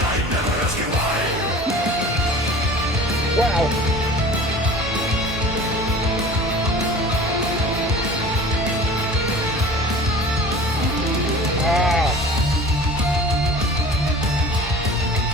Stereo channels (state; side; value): normal; both; correlation 0.41